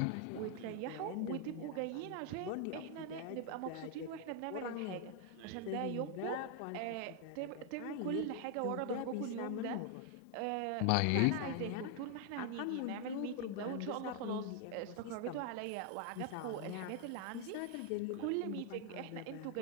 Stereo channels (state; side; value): different; both; correlation 0.00